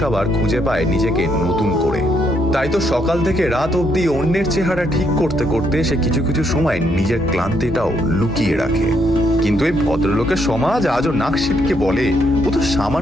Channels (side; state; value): both; normal; correlation 0.74